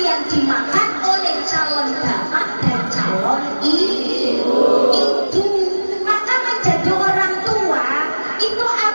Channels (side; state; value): both; inverted; correlation -1.00